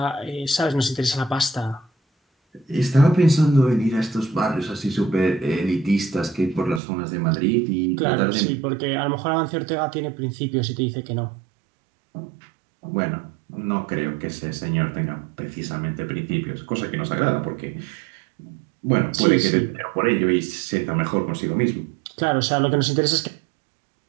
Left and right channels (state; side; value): drops out; left; at 6.8 s